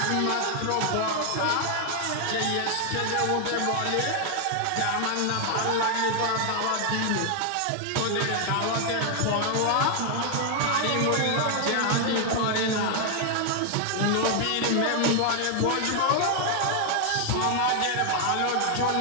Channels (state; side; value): different; both; correlation 0.00